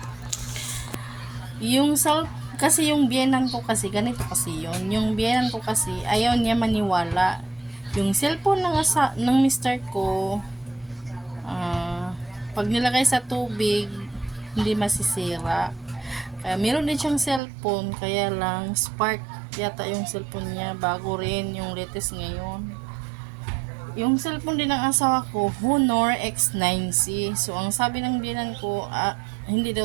Yung kasi yung biyenan ko kasi, ganito kasi yun. Yung biyenan ko kasi, ayaw niya maniwala. Yung cellphone ng mister ko, pag nilagay sa tubig, hindi masisira. Kaya meron din siyang cellphone, kaya lang Spark yata yung cellphone niya, bago rin yung latest ngayon. Yung cellphone din ng asawa ko, Honor X9C. So ang sabi ng biyanan ko, hindi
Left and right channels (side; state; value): left; drops out; at 17.4 s